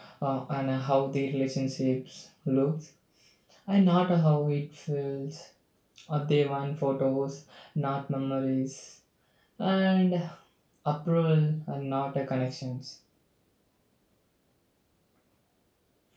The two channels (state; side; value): identical; both; correlation 1.00